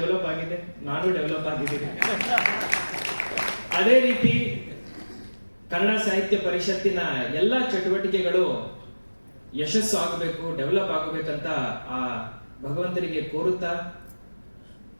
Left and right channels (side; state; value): both; inverted; correlation -1.00